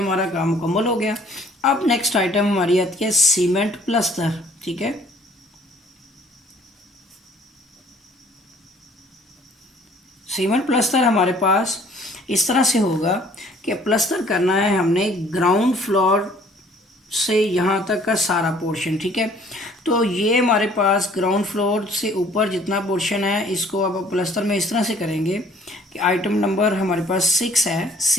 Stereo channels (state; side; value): normal; both; correlation 0.57